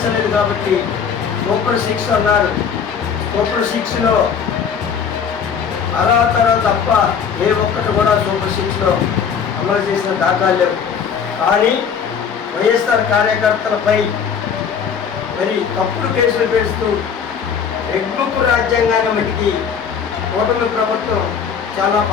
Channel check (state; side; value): quieter; right; 7.0 dB